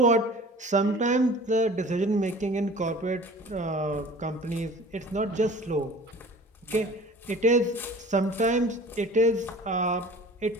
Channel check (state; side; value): normal; both; correlation 0.44